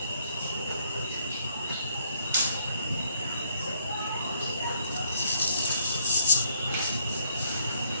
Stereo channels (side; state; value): both; inverted; correlation -0.70